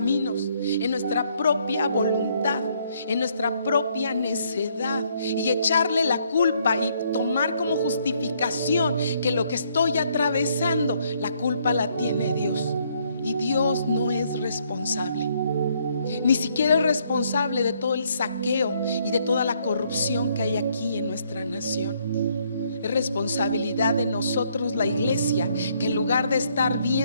en nuestra propia voluntad, en nuestra propia necedad, y echarle la culpa y tomar como justificación que lo que estoy atravesando, la culpa la tiene Dios. Y Dios no es responsable. Ni siquiera es responsable de todo el saqueo y de toda la corrupción que hay aquí en nuestra nación. Es responsabilidad de nosotros, la iglesia, que en lugar de estar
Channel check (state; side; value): inverted; both; correlation -0.70